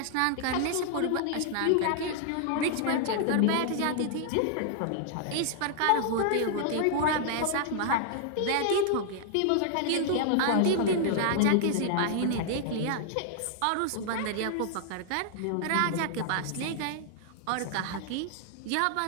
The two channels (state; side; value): different; both; correlation -0.01